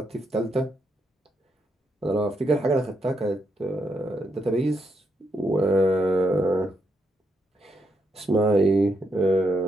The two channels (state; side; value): normal; both; correlation 0.79